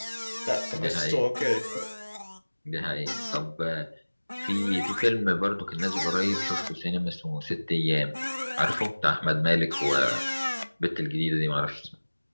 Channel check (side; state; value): both; inverted; correlation -1.00